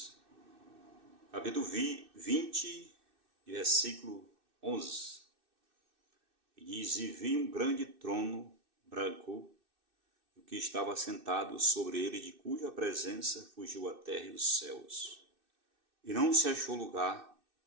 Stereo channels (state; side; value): late; left; 2.6 ms